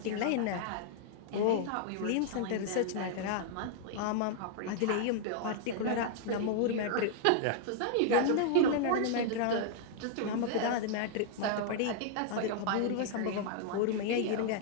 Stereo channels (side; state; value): both; different; correlation -0.01